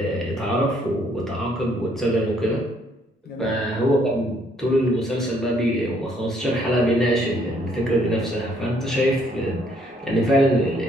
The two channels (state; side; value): normal; both; correlation 0.66